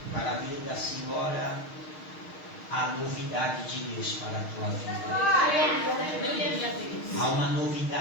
para a vida da senhora a novidade de Deus para a tua vida. Há uma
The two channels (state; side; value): late; right; 6.4 ms